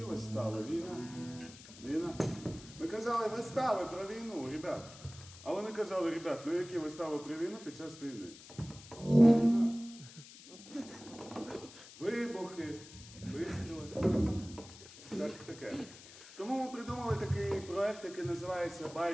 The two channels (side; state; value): left; noise; hiss, 18 dB below the sound